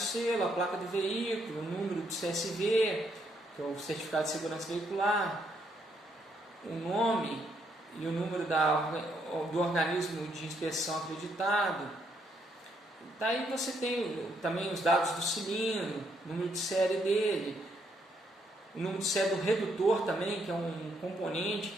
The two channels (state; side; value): normal; both; correlation 0.73